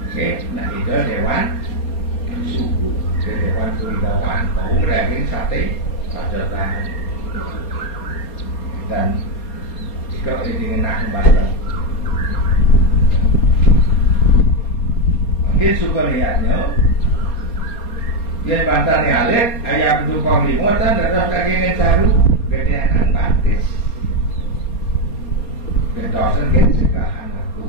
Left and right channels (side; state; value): right; late; 4.3 ms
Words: Nah itu dewan suku, dewan kewibawaan. Oh daging sate pajaran dan jika ini nak batal. Mungkin suka lihatnya. Dia bantan ni alik, ayam dukong limutan, terus daging caru, gedean batis. Gentosan segala anakku.